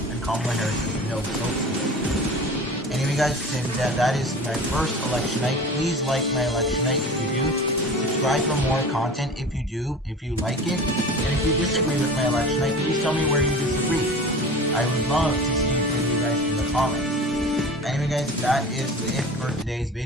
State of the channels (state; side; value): normal; both; correlation 0.37